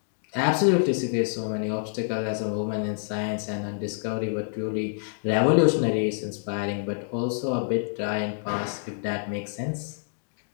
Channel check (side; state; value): right; silent; digital silence